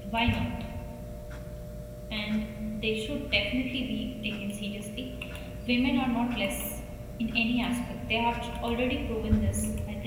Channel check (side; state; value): both; identical; correlation 1.00